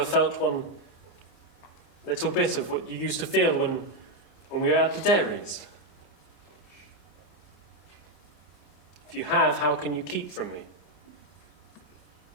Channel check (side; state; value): right; late; 26 ms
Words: felt one little bit of what you used to feel when we were at the dairies? If you have, how can you keep from me?